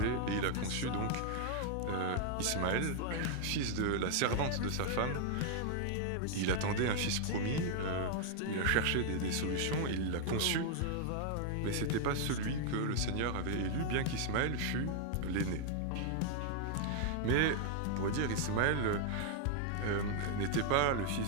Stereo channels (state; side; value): different; both; correlation 0.00